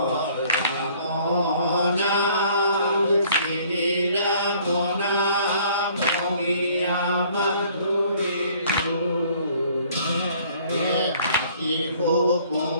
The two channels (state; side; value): inverted; both; correlation -0.57